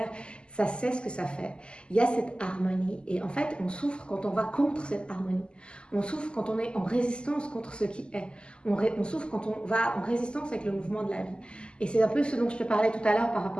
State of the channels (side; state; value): right; late; 0.050 ms